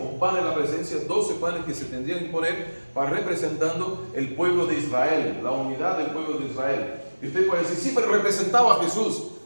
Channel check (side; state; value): both; inverted; correlation -1.00